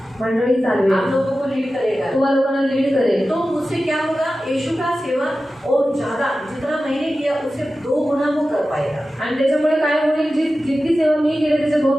मंडळी चालवेल, आप लोगों को लीड करेगा। तुम्हा लोकांना लीड करेल। तो उससे क्या होगा? यीशु का सेवा और ज्यादा जितना मैंने किया उससे 2 गुना वो कर पाएगा। आणि त्याच्यामुळे काय होईल, जितकी सेवा मी केली त्याच्या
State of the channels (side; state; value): both; normal; correlation 0.94